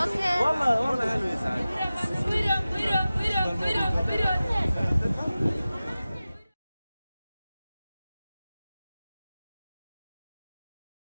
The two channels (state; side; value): inverted; both; correlation -0.96